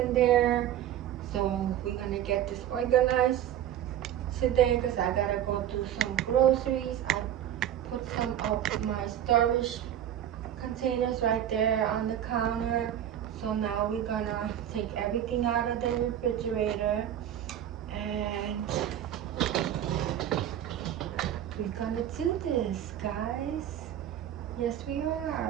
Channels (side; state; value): left; quieter; 10.9 dB